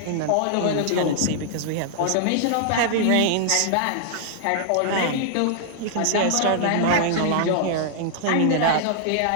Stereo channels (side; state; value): both; different; correlation -0.01